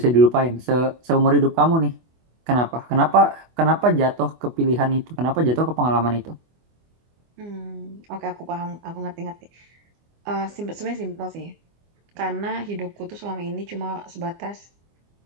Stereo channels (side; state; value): left; late; 24 ms